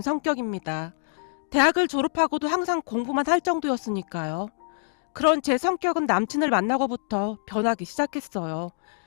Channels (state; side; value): silent; right; digital silence